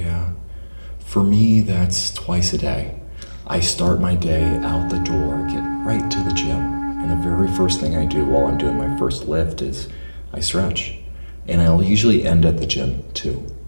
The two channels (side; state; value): both; inverted; correlation -1.00